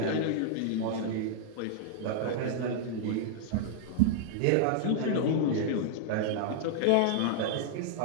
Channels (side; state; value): both; different; correlation -0.01